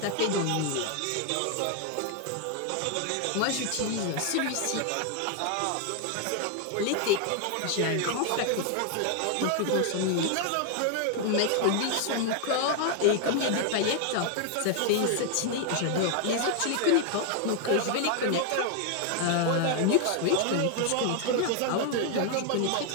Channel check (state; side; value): different; both; correlation 0.00